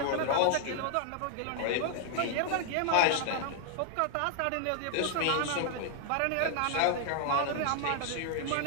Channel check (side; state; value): both; different; correlation 0.00